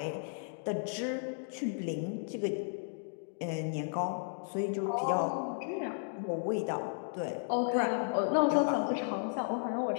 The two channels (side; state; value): right; silent; digital silence